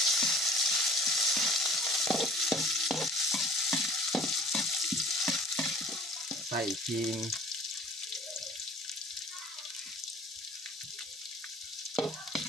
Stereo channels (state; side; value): normal; both; correlation 0.49